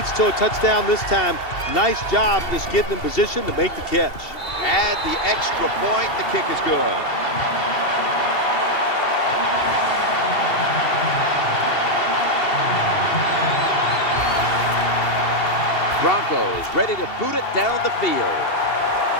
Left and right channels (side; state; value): right; late; 2.7 ms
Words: to a touchdown this time. Nice job just getting in position to make the catch. Add the extra point. The kick is good. Broncos ready to boot it down the field.